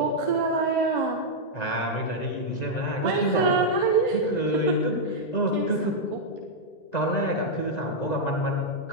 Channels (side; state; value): right; late; 1.9 ms